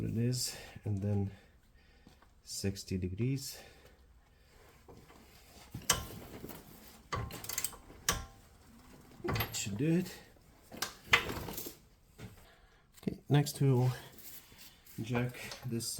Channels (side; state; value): both; identical; correlation 1.00